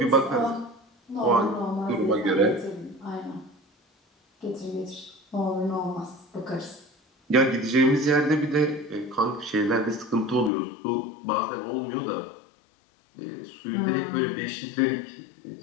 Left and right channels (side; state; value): right; drops out; at 10.5 s